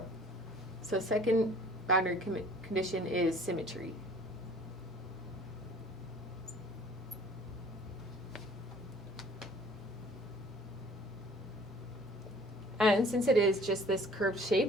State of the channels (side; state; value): both; normal; correlation 0.52